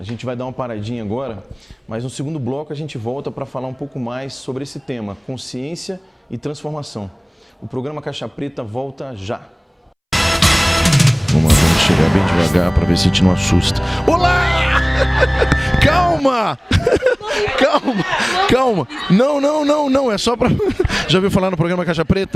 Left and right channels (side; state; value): both; identical; correlation 1.00